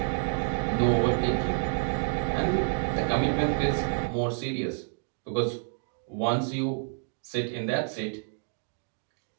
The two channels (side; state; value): left; silent; digital silence